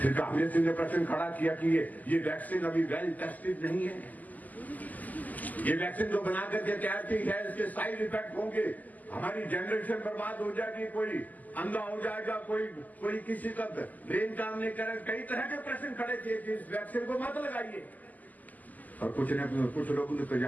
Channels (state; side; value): late; right; 0.080 ms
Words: फिर कांग्रेस ने प्रश्न खड़ा किया कि ये वैक्सीन अभी वेल टेस्टेड नहीं है। ये वैक्सीन जो बना करके तैयार की है, इसके साइड इफेक्ट होंगे, हमारी जनरेशन बर्बाद हो जाएगी, कोई अंधा हो जाएगा, कोई किसी का ब्रेन काम नहीं करेगा। कई तरह के प्रश्न खड़े किए कि इस वैक्सीन को मत लगाइए। और कुछ लोगों ने तो